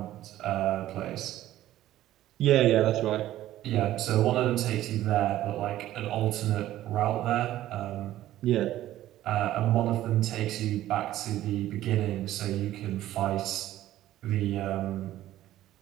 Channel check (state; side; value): quieter; left; 13.9 dB